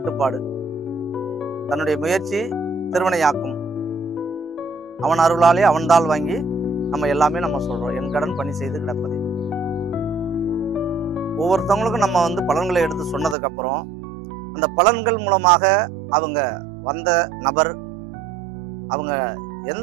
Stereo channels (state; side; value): drops out; left; at 13.4 s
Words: தன்னுடைய முயற்சி திருவினையாக்கும், அவன் அருளாலே அவன்தால் வாங்கி நம்ம எல்லாமே நம்ம சொல்றோம். என் கடன் பணி செய்து கிடப்பது. ஒவ்வொருத்தவங்களுக்கும் நம்ம பலன்களை எடுத்து சொன்னதுக்கு அப்புறம் அந்த பலன்கள் மூலமாக அவங்க வந்த நபர் அவங்க